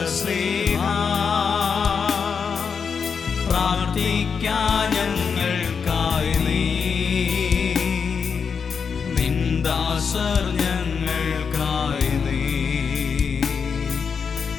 ശ്ലീഹ, പ്രാർത്ഥിക്കാൻ ഞങ്ങൾക്കായി നീ, നിന്ദാസർ ഞങ്ങൾക്കായി നീ,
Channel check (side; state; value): right; quieter; 6.1 dB